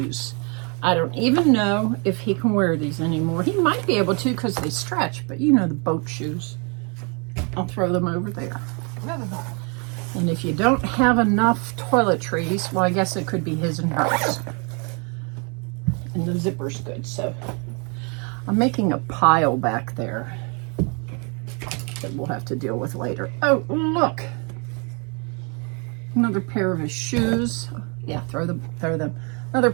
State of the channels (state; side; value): quieter; left; 34.9 dB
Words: I don't even know if he can wear these anymore. He might be able to because they stretch, but you know the boat shoes. I'll throw them over there. And if you don't have enough toiletries, well, I guess it could be his and hers. And the zipper's good, so I'm making a pile back there that we'll have to deal with later. Oh, look. Another pair of his shoes. Yeah, throw them. Another